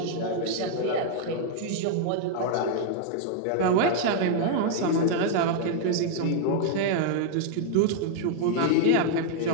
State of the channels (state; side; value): different; both; correlation 0.00